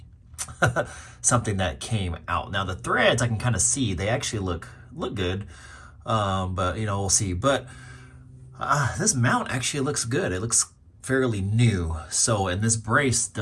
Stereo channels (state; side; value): identical; both; correlation 1.00